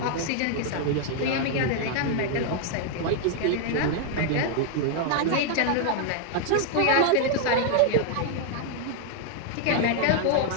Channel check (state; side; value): different; both; correlation 0.00